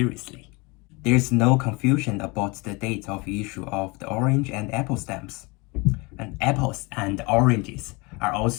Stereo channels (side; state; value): right; quieter; 26.9 dB